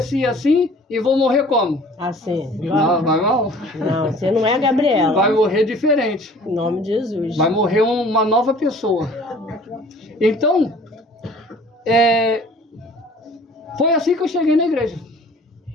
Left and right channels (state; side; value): normal; both; correlation 0.50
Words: assim e vou morrer como? Assim. Não, vai mal. Não, você não é a Gabriela. Vai morrer diferente. Em nome de Jesus. Vai morrer uma nova pessoa. Então, foi assim que eu cheguei na igreja.